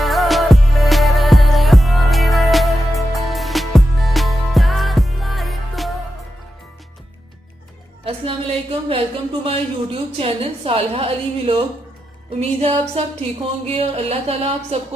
अस्सलाम वालेकुम, welcome to my YouTube channel Saleha Ali vlog. उम्मीद है आप सब ठीक होंगे और अल्लाह ताला आप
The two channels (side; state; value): both; normal; correlation 0.88